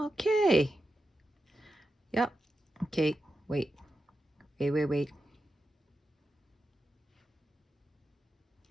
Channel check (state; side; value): normal; both; correlation 0.89